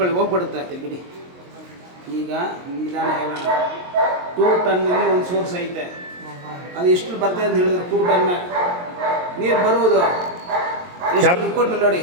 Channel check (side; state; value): left; late; 22 ms